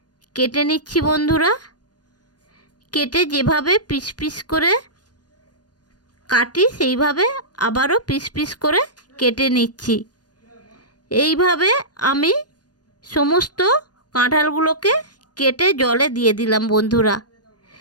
কেটে নিচ্ছি বন্ধুরা। কেটে যেভাবে পিস পিস করে কাটি সেইভাবে আবারও পিস পিস করে কেটে নিচ্ছি। এইভাবে আমি সমস্ত কাঁঠালগুলোকে কেটে জলে দিয়ে দিলাম বন্ধুরা।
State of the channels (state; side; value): late; right; 0.69 ms